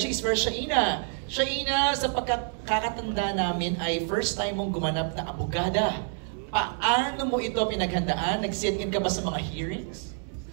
is for Shaina. Shaina, sa pagkakatanda namin ay first time mong gumanap na abogada. Paano mo ito pinaghandaan? Nag-sit-in ka ba sa mga hearings?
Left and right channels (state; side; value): silent; left; 60 dB below the other